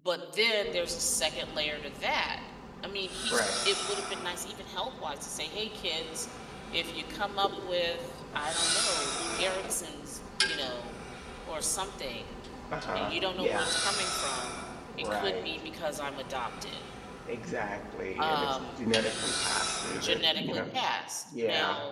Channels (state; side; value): identical; both; correlation 1.00